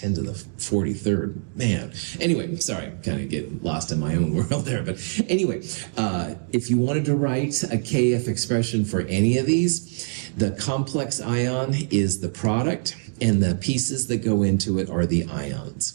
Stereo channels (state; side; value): silent; left; 62 dB below the other